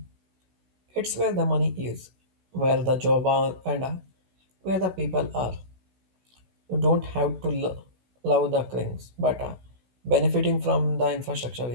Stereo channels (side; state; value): left; late; 16 ms